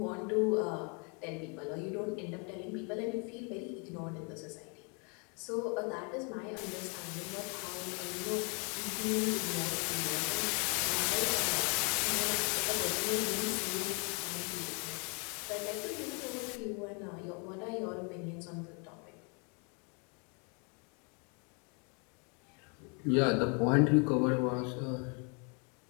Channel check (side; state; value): right; quieter; 35.3 dB